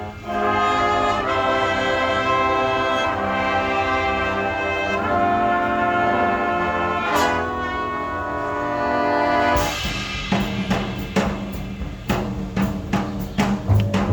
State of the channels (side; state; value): both; identical; correlation 1.00